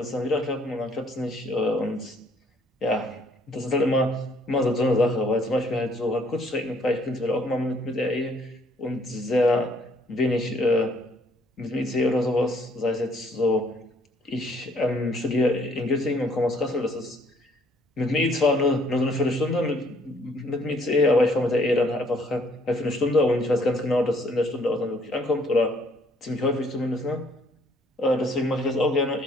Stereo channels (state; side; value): normal; both; correlation 0.64